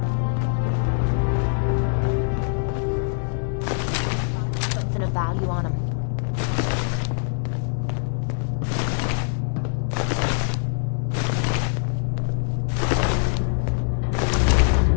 Gotta be something of value on him.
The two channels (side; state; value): right; silent; 63 dB below the other